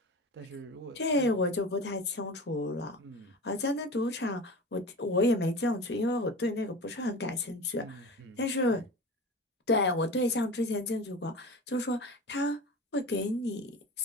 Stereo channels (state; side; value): normal; both; correlation 0.33